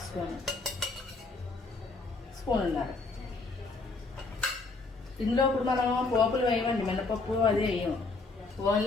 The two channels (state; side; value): quieter; right; 3.7 dB